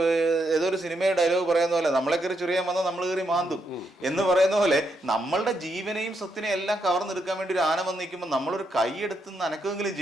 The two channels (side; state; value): both; normal; correlation 0.80